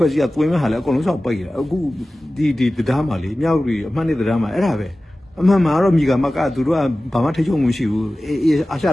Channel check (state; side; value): normal; both; correlation 0.96